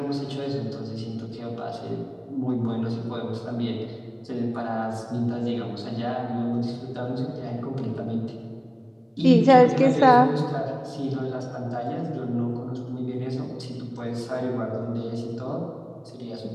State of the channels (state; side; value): identical; both; correlation 1.00